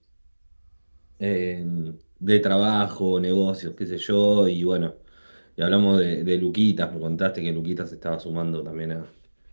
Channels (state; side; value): inverted; both; correlation -1.00